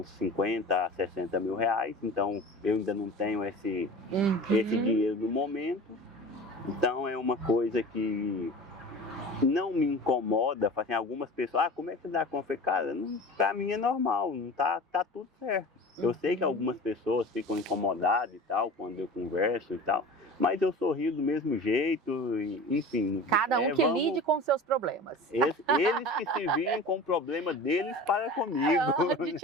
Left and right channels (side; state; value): both; normal; correlation 0.37